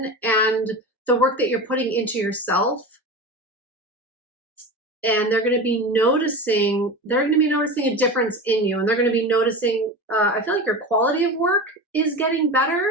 and the work that you're putting into yourself. And they're going to be noticing a difference in you. And they're going to be noticing, I feel like your quality of work is getting better.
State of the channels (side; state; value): both; normal; correlation 0.28